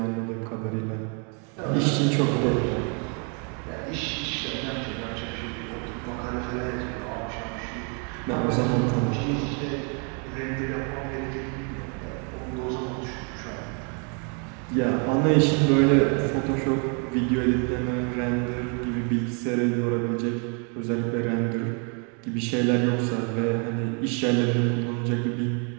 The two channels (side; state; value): left; quieter; 38.0 dB